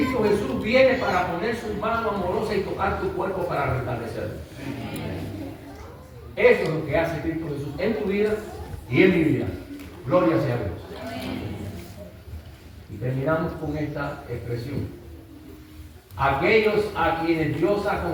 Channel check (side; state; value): both; identical; correlation 1.00